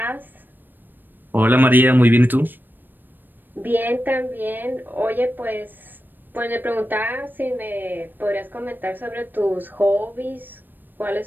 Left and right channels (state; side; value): late; left; 0.092 ms